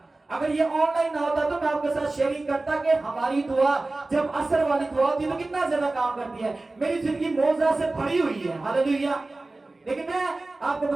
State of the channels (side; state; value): left; quieter; 3.1 dB